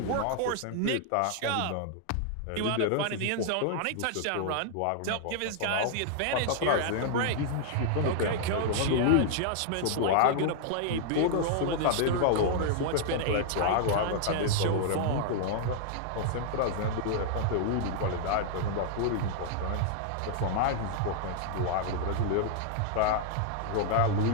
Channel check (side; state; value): both; different; correlation -0.01